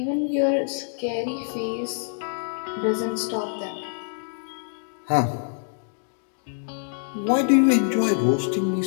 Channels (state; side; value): silent; right; digital silence